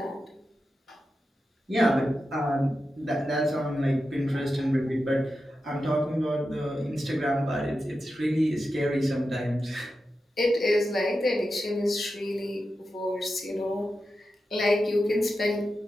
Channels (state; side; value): normal; both; correlation 0.90